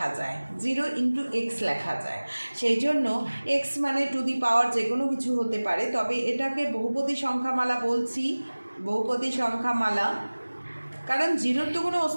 যায়, 0 ইন্টু এক্স লেখা যায়। সেই জন্য এক্স মানে টু দি পাওয়ার যে কোনো কিছু হতে পারে, তবে এটাকে বহুপদী সংখ্যামালা বলছি, বহুপদী সংখ্যামালা, কারণ 0-র তো কোনো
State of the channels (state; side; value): inverted; both; correlation -1.00